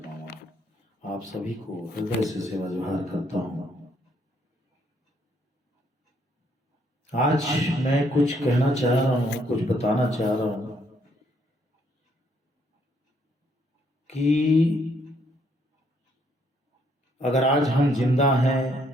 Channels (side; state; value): both; normal; correlation 0.70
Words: मामा। आप सभी को हृदय से सेवा जोहार करता हूं। आज मैं कुछ कहना चाह रहा हूं, कुछ बताना चाह रहा हूं कि अगर आज हम जिंदा हैं